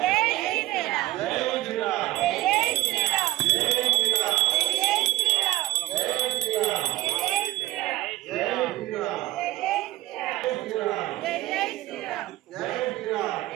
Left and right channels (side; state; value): left; quieter; 16.3 dB